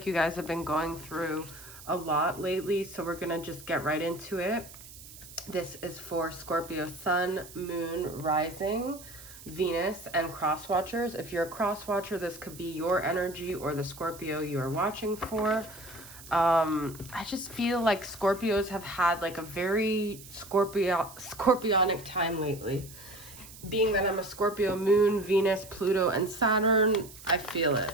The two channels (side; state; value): right; noise; hiss, 17 dB below the sound